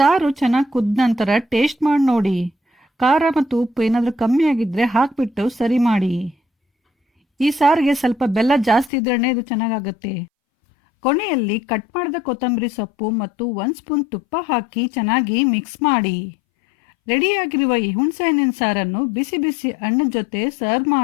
ಚೆನ್ನಾಗಿ ಕುದ್ದ ನಂತರ ಟೇಸ್ಟ್ ಮಾಡಿ ನೋಡಿ. ಖಾರ ಮತ್ತು ಉಪ್ಪು ಏನಾದರೂ ಕಮ್ಮಿ ಆಗಿದ್ರೆ ಹಾಕಿಬಿಟ್ಟು ಸರಿ ಮಾಡಿ. ಈ ಸಾರಿಗೆ ಸ್ವಲ್ಪ ಬೆಲ್ಲ ಜಾಸ್ತಿ ಇದ್ರೇ ಇದು ಚೆನ್ನಾಗಾಗುತ್ತೆ. ಕೊನೆಯಲ್ಲಿ ಕಟ್ ಮಾಡಿದ ಕೊತ್ತಂಬರಿ ಸೊಪ್ಪು ಮತ್ತು 1 ಸ್ಪೂನ್ ತುಪ್ಪ ಹಾಕಿ ಚೆನ್ನಾಗಿ ಮಿಕ್ಸ್ ಮಾಡಿ. ರೆಡಿಯಾಗಿರುವ ಈ ಹುಣಸೆ ಹಣ್ಣಿನ ಸಾರನ್ನು ಬಿಸಿ ಬಿಸಿ ಅನ್ನದ ಜೊತೆ ಸರ್ವ್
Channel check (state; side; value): drops out; right; at 8.9 s